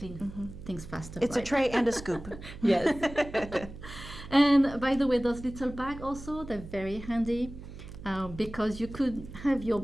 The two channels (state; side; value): noise; right; hum, 13 dB below the sound